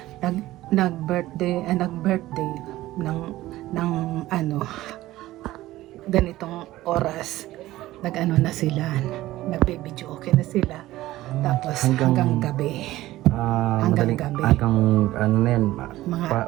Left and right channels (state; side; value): quieter; left; 16.3 dB